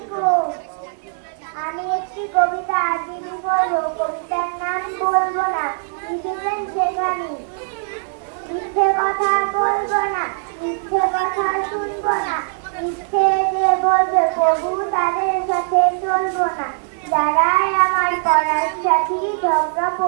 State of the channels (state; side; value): silent; left; digital silence